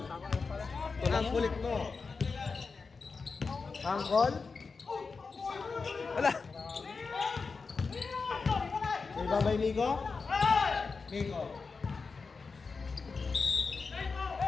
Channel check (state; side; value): quieter; right; 4.6 dB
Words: Ang kulit mo. Angkol. wala. Rebound by Nico. Nico.